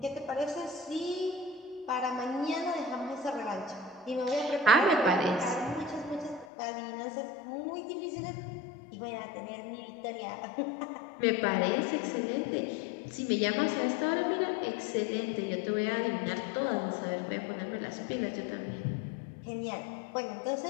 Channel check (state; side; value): drops out; right; at 6.5 s